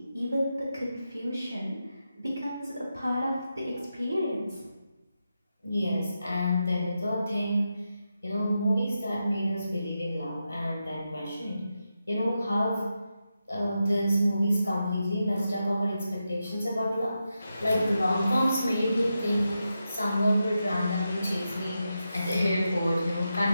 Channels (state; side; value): inverted; both; correlation -0.88